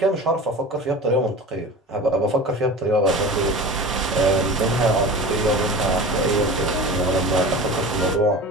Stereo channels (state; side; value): normal; both; correlation 0.34